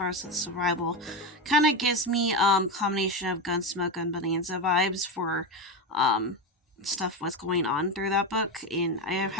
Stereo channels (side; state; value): both; normal; correlation 0.16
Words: of the survival. Kind of gives me combination of Gunsmoke and Bonanza vibes for stuff what's going on through that book. And I